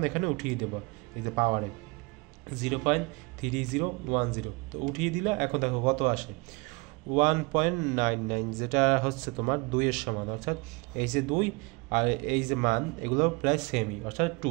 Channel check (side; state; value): left; quieter; 27.5 dB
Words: এখানে উঠিয়ে দেবো, এই যে পাওয়ারে 0.3010। তো উঠিয়ে দিলে এখন দেখো কত আসে, 1.99, যেটা তোমার 2 এর সমান, অর্থাৎ এই যে 2 আর এই যে মান এগুলো প্রায় সেমই, অর্থাৎ